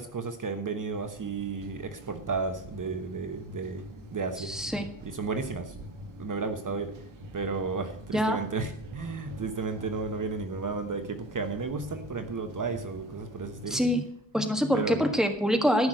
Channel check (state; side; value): normal; both; correlation 0.41